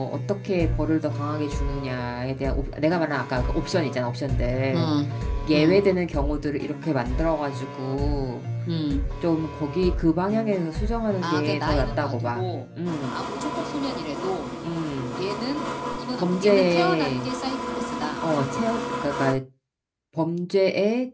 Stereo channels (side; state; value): both; identical; correlation 1.00